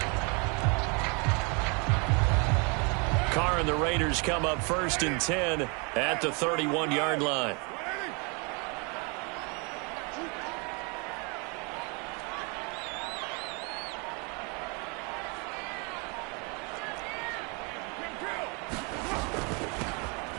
Carr and the Raiders come up 1st and 10 at the 31-yard line.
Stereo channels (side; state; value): left; quieter; 32.7 dB